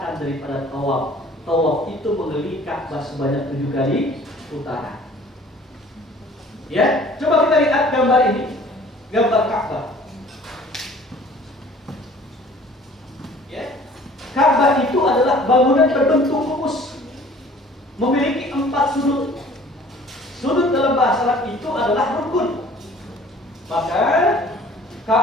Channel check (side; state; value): both; normal; correlation 0.51